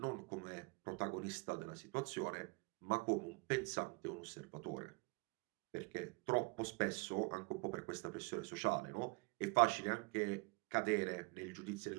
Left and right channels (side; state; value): left; quieter; 30.4 dB